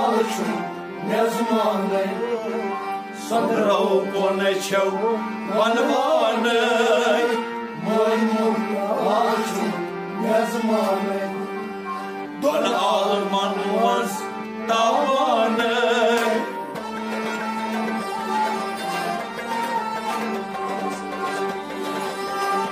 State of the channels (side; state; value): both; identical; correlation 1.00